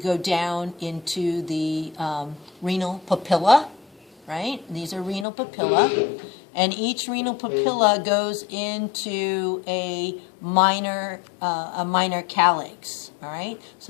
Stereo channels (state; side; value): drops out; right; at 5.2 s